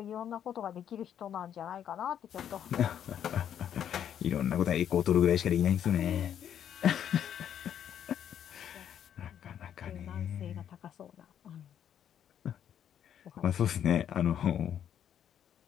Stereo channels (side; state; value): right; quieter; 9.5 dB